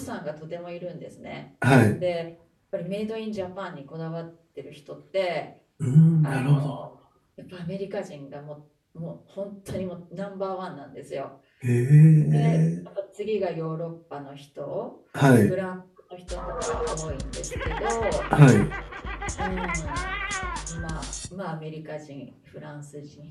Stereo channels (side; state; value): both; identical; correlation 1.00